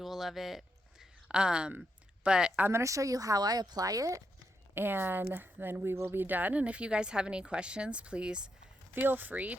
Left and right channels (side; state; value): both; normal; correlation 0.82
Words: of it. But I'm going to show you how I apply it, and then we will be done. And if you guys have any questions, please feel free